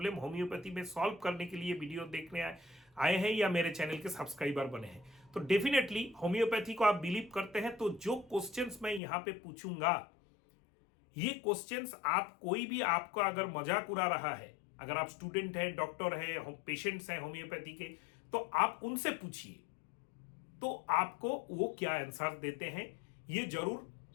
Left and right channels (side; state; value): right; drops out; at 9.0 s